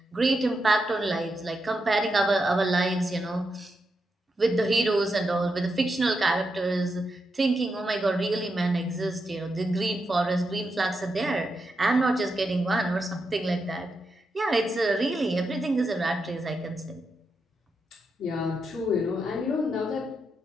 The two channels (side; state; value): both; normal; correlation 0.85